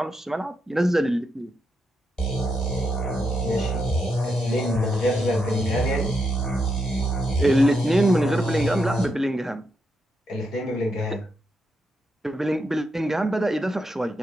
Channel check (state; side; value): normal; both; correlation 0.82